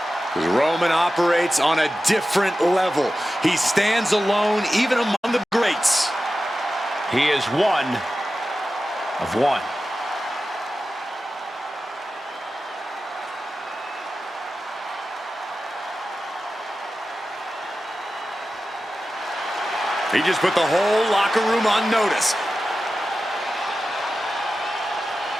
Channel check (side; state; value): both; normal; correlation 0.93